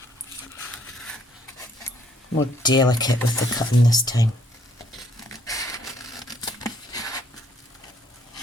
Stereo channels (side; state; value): both; normal; correlation 0.66